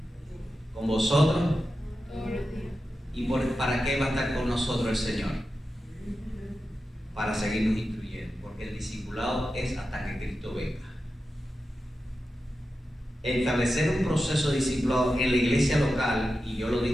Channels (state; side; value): normal; both; correlation 0.91